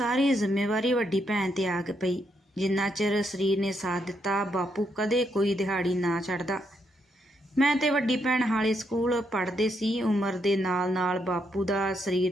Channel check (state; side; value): normal; both; correlation 0.78